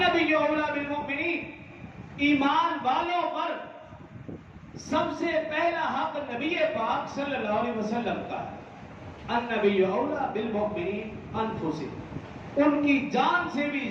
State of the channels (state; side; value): identical; both; correlation 1.00